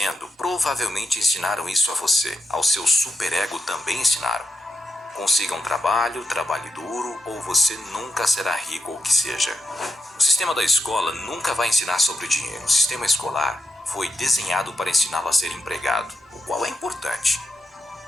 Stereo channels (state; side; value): normal; both; correlation 0.88